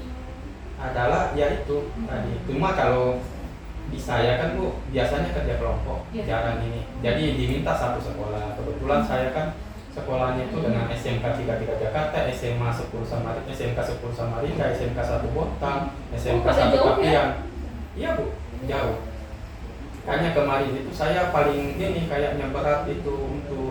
adalah yaitu tadi. Cuma kalau di saya kan Bu biasanya kerja kelompok, Iya. jarang ini. Jadi diminta satu sekolah. Kebetulan saya kan sekolahnya itu dengan SMK 33 Jakarta, SMA 10 Samarinda, SMK 10 Samarinda, SMK 1 Bontang, SMK pada 1 jauh ya? Kapian. Iya Bu, jauh. Makanya kemarin itu saya paling ini kayaknya berat itu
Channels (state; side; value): identical; both; correlation 1.00